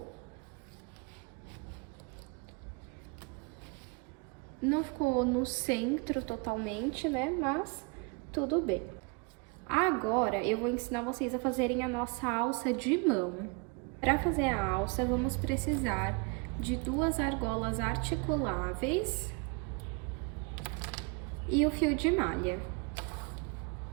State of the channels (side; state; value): left; quieter; 30.6 dB